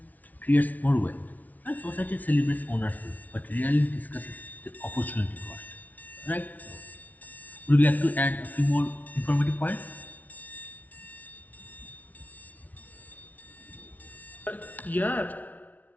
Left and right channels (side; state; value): right; late; 0.075 ms